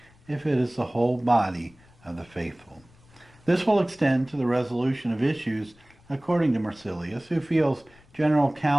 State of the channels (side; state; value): left; noise; rumble, 28 dB below the sound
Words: if it is the whole body of the faithful. This will extend to the resolution of issues according to Marsilius, who feels general